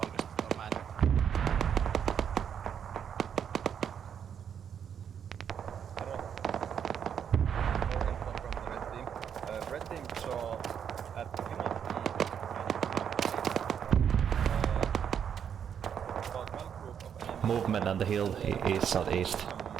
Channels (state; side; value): quieter; left; 8.1 dB